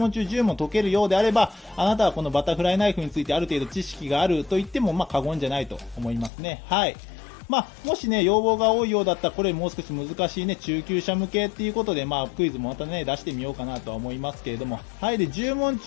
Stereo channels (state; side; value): drops out; right; at 6.3 s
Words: 中10問解けるようであれば、あなたはこのバタフライナイフについてある程度知識があると言っても、過言じゃないと思いますね。はい。もしね、要望が多いようだったら、これもう少し難しいね、中級者向けっていうことで、クイズもまたね、出してみようかなとは思いますけれども。はい。で、10問